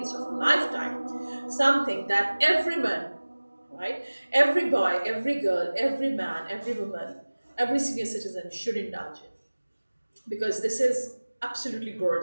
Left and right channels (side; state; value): both; inverted; correlation -1.00